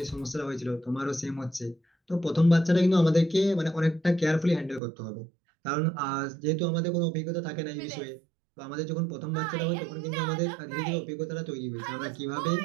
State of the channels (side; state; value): left; drops out; at 4.8 s